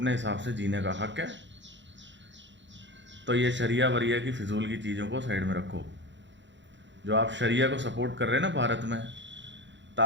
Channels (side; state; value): left; late; 0.53 ms